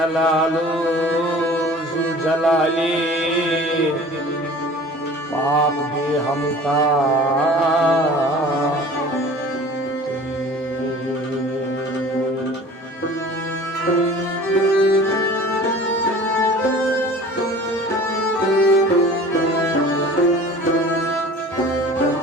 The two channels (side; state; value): both; normal; correlation 0.44